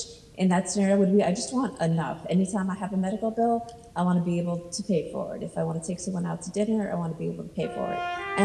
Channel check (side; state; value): both; identical; correlation 1.00